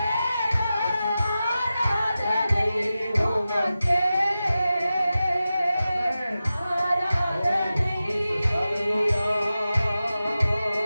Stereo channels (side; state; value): both; inverted; correlation -0.93